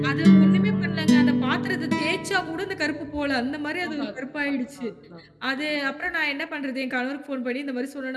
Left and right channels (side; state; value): both; identical; correlation 1.00